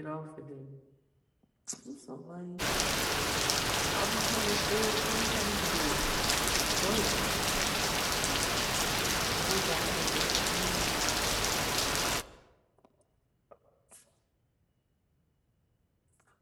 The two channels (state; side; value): identical; both; correlation 1.00